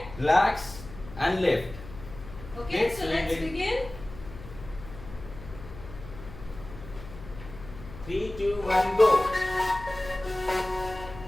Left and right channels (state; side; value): noise; left; hum, 14 dB below the sound